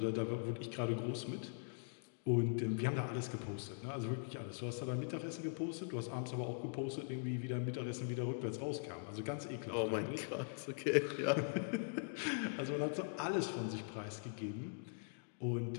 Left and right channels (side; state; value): right; silent; digital silence